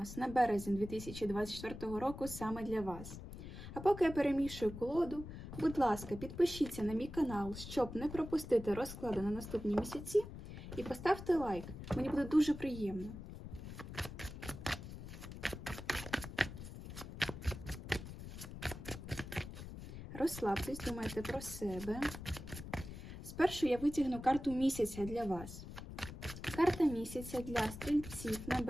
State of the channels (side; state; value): left; noise; rumble, 11 dB below the sound